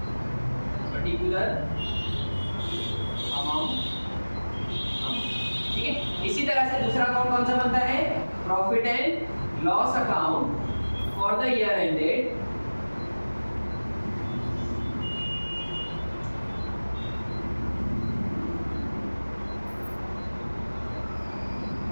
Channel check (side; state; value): both; inverted; correlation -1.00